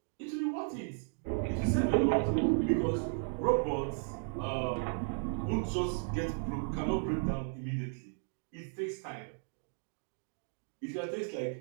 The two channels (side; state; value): left; silent; 55 dB below the other